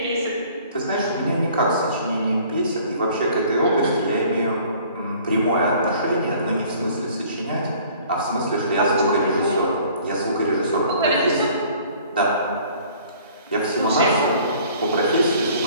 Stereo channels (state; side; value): inverted; both; correlation -0.53